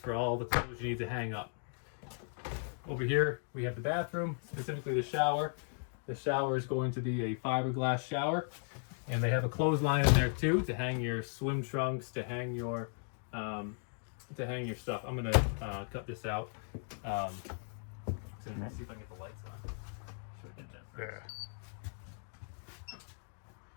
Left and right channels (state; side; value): silent; right; 53 dB below the other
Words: all the clothes you need to hang up. Over here we have the bathroom, specifically the shower. The shower is going to be a fiberglass shower, and they have a clothesline in there too to hang your swim trunks, to hang your to hang your stuff. I'm gonna cut this out. So let's see if I can get the lights on. Should I get that first?